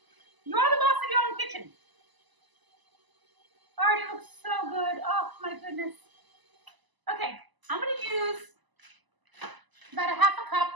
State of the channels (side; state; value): left; late; 1.0 ms